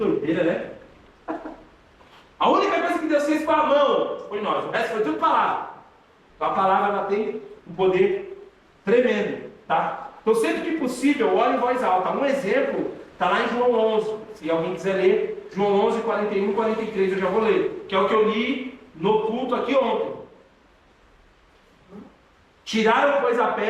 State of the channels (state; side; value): identical; both; correlation 1.00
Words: né? A única coisa que Deus fez com a mão foi nós, o resto foi tudo palavra. Então a palavra ela tem um poder tremendo, tá? Então, sempre que possível, ore em voz alta. Um exemplo está lá em João 11. Se alguém quiser ler, João 11, 41 e 43, eu já vou ler. Que é o que eu li no culto aqui ontem. Tiraram, pois, a